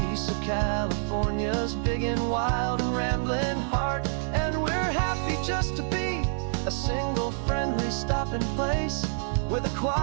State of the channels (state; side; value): silent; left; digital silence